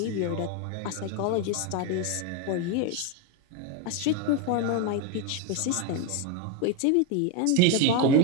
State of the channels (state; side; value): different; both; correlation 0.02